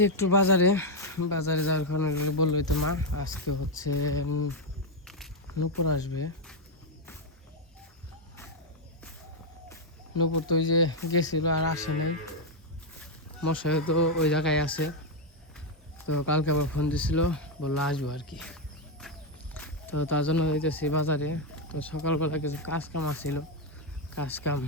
একটু বাজারে যাওয়ার কারণে বললোই তো মা আজকে হচ্ছে নূপুর আসবে। নূপুর তো ওই যে গেছিল আর আসে নাই, মশাই তো ওই জায়গায় আছে। তো কালকে আবার ফোন দিছিল, বললো আসবো আর কি। তো তার জন্য হইতেছি বাজারে। তো সকালবেলা কিছু কাজ কাম আসছিল, কাজ কাম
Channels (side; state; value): both; normal; correlation 0.02